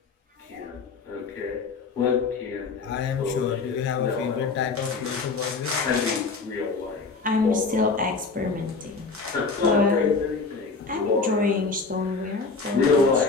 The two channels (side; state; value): right; quieter; 4.3 dB